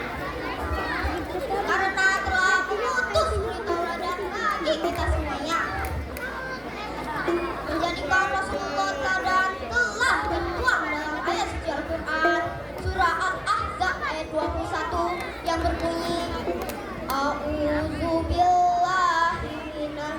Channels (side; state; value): both; identical; correlation 1.00